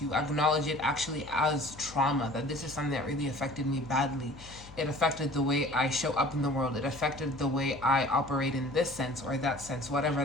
you. Acknowledge it actually as trauma, that this is something that really affected me badly. It affected the way I show up in the world. It affected the way I operate in this sense or that sense. Whatever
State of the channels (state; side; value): noise; left; hum, 19 dB below the sound